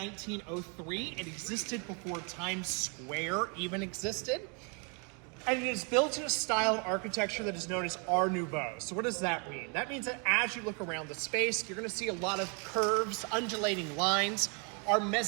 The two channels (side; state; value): left; quieter; 35.9 dB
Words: It existed before Times Square even existed. And it is built in a style of architecture that is known as Art Nouveau. So what does that mean? That means that as you look around the space, you're gonna see a lot of curves, undulating lines. Our